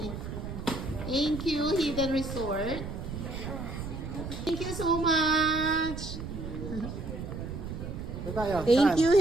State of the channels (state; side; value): noise; right; rumble, 7 dB below the sound